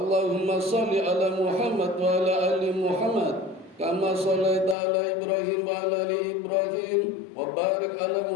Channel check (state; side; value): drops out; right; at 4.8 s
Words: shalli ala Muhammad wa ala ali Muhammad kama shallaita ala Ibrahim wa ala ali Ibrahim wa barik ala